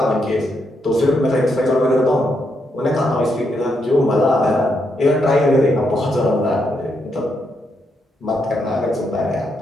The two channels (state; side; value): normal; both; correlation 0.79